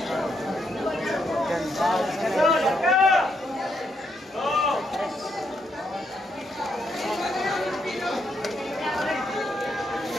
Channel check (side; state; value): both; normal; correlation 0.77